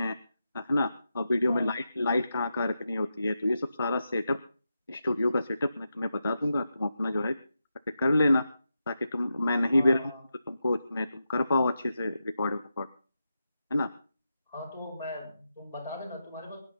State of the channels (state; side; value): inverted; both; correlation -0.88